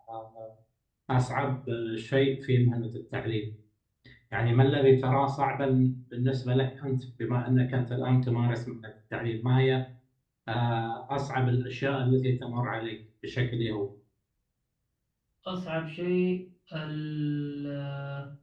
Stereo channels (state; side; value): identical; both; correlation 1.00